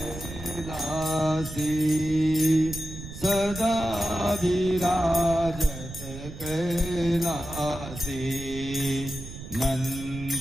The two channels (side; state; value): right; noise; rumble, 11 dB below the sound